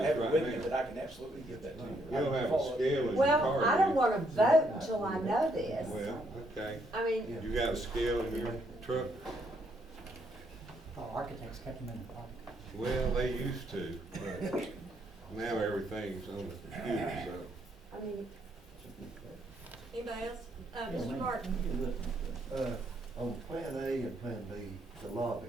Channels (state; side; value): normal; both; correlation 0.73